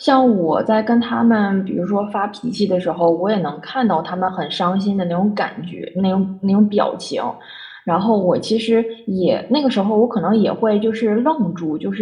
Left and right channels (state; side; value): identical; both; correlation 1.00